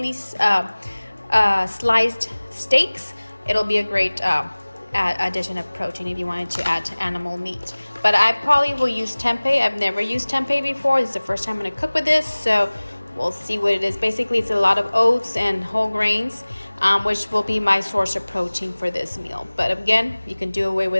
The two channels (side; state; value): both; inverted; correlation -1.00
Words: sliced steaks. It'll be a great addition of protein if you wanted to add animal meat. But I probably will use tempeh. I've never used tempeh before. This is the first time I'm going to cook with this, so we'll see what it is. Basically, it's a lot of oats and whole grains, which will be my source of protein for this meal. But again, you can do away